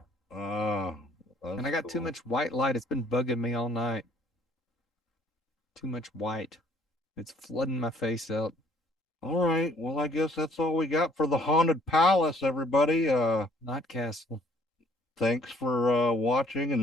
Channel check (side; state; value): both; normal; correlation 0.61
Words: And I got too much white light. It's been bugging me all night. Too much white. It's flooding my face out. All right. Well, I guess that's all we got for the Haunted Palace, everybody. Not Castle. Thanks for watching